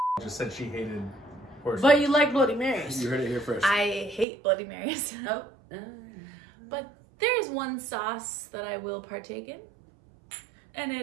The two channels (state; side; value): drops out; left; at 4.2 s